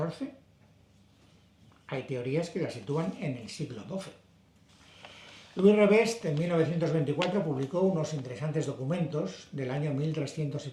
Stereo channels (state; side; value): identical; both; correlation 1.00